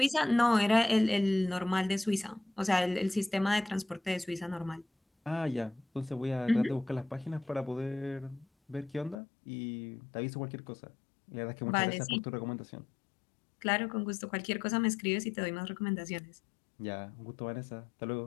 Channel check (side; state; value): right; drops out; at 9.2 s